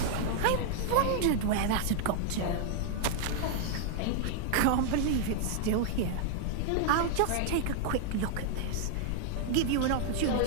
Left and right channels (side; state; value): both; different; correlation -0.01